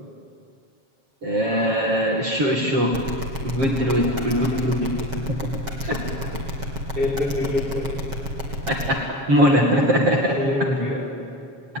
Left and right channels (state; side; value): late; left; 7.4 ms